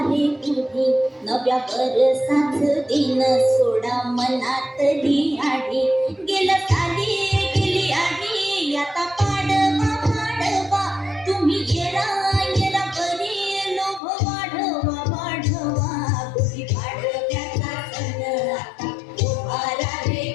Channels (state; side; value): drops out; right; at 14.0 s